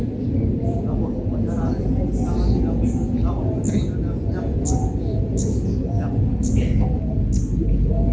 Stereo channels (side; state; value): both; identical; correlation 1.00